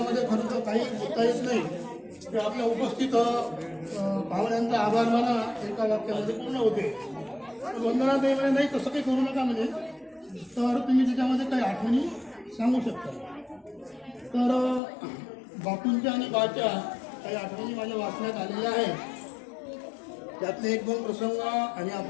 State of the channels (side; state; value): right; drops out; at 14.8 s